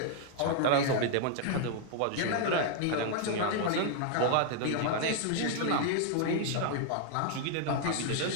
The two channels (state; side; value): different; both; correlation 0.00